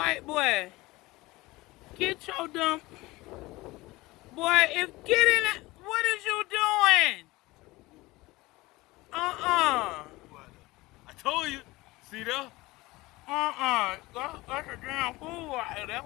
boy. Get your dumb boy. If get in it, what is you doing? I told you. See there? That's a damn fool right there. That's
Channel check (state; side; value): quieter; right; 20.6 dB